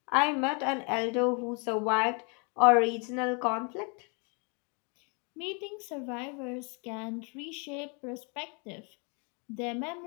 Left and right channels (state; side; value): quieter; right; 35.1 dB